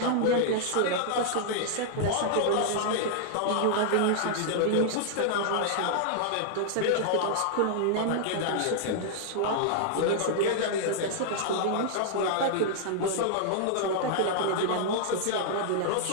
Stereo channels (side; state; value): both; different; correlation -0.01